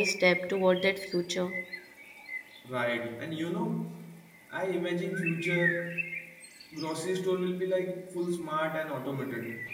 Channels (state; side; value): identical; both; correlation 1.00